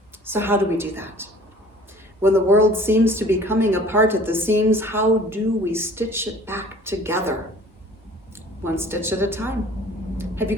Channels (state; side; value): normal; both; correlation 0.49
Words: So how do we do that? When the world seems to be coming apart at the seams, how do we stitch it back together? One stitch at a time. Have you